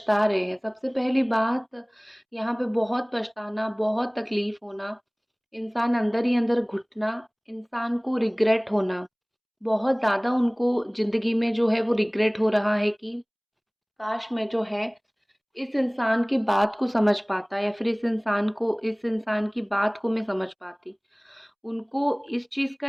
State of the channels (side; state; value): both; identical; correlation 1.00